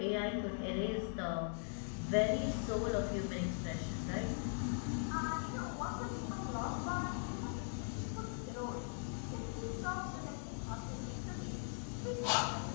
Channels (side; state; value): right; silent; 51 dB below the other